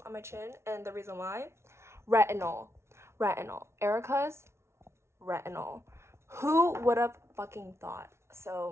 on my chin, and the reason why, retinol. Erica's retinol. Who would have fucking thought?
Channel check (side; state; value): left; late; 0.13 ms